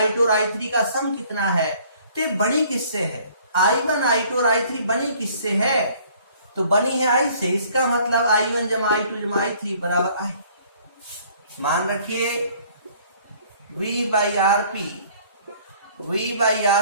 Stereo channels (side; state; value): both; inverted; correlation -0.57